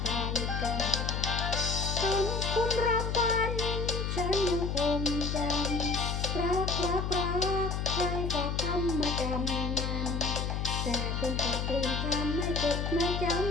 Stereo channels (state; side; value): noise; left; hum, 1 dB below the sound